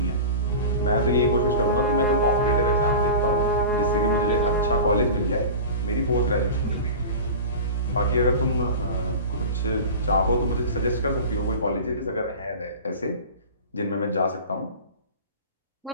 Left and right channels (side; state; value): both; inverted; correlation -0.33